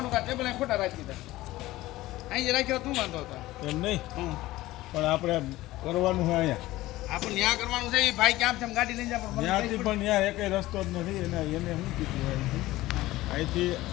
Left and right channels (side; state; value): right; quieter; 17.3 dB